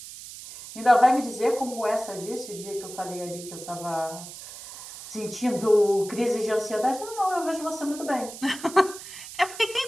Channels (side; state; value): right; noise; hiss, 13 dB below the sound